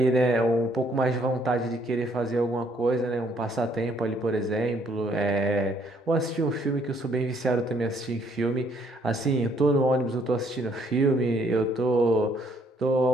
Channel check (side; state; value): both; normal; correlation 0.66